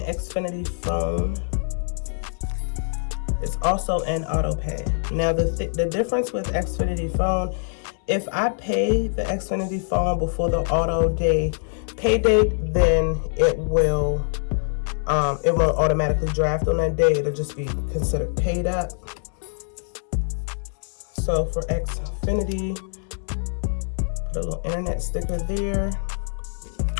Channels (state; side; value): silent; right; 63 dB below the other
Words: Xfinity phone is also an auto pay. Now the difference with Xfinity phone, if I pay the Xfinity phone before the auto pay date, then it won't automatically draft on that day. It'll just be considered paid up. So for Xfinity, put a little internet sticker there.